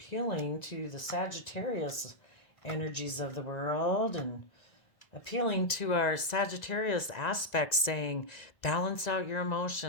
to the Sagittarius energies of the world and appealing to our Sagittarius aspects, saying, balance out your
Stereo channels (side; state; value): right; late; 1.9 ms